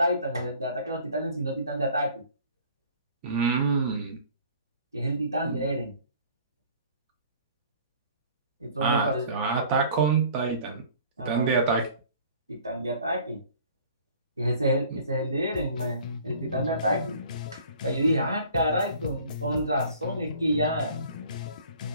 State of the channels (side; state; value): both; inverted; correlation -0.50